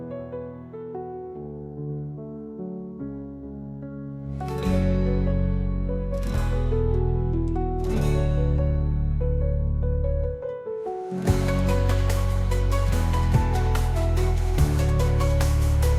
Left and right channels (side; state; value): both; identical; correlation 1.00